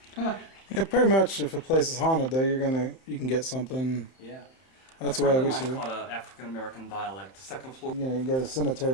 Yeah, pretty much. If a place is haunted, though, you can get something. Yeah. That's the way we I see it. caught an African American dialect. The second floor. You know, you go to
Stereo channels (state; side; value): late; right; 30 ms